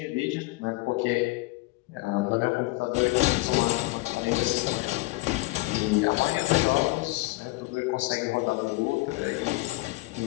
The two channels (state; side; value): quieter; right; 22.4 dB